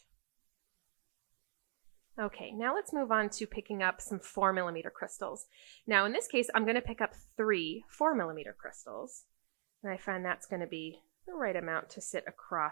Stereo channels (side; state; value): left; silent; digital silence